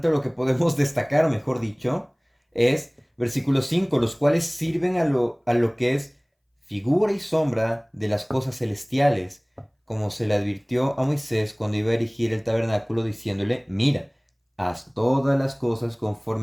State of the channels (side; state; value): both; identical; correlation 1.00